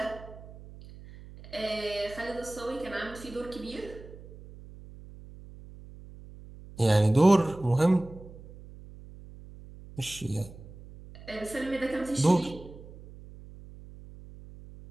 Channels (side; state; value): right; noise; hum, 17 dB below the sound